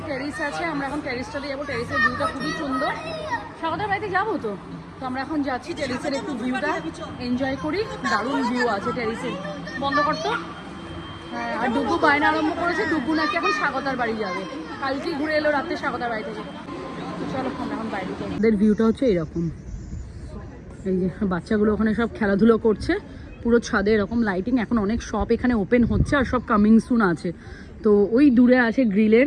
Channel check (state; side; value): identical; both; correlation 1.00